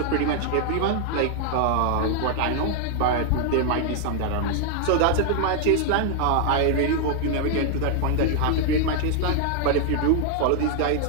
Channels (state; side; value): different; both; correlation 0.00